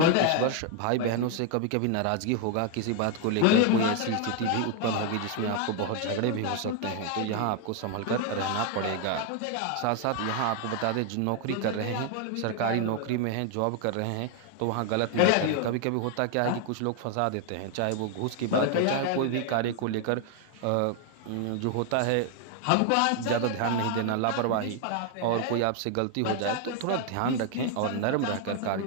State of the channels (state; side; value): different; both; correlation 0.01